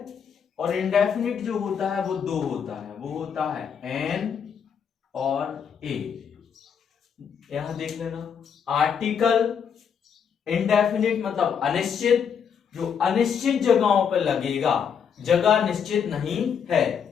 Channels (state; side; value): quieter; right; 7.2 dB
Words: और इंडेफिनिट जो होता है वो दो होता है, वो होता है एन और ए। यहां देख लेना, आर्टिकल इंडेफिनिट मतलब अनिश्चित, जो अनिश्चित जगहों पर लगेगा, जगह निश्चित नहीं है,